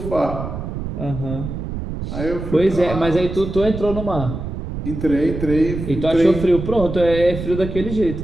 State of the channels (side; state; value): right; noise; rumble, 7 dB below the sound